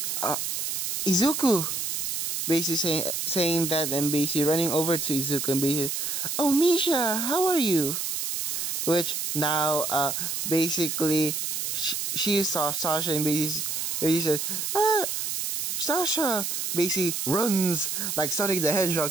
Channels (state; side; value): noise; right; hiss, 2 dB below the sound